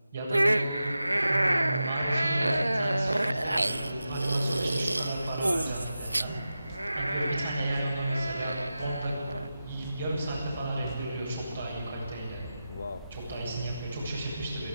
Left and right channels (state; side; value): inverted; both; correlation -0.91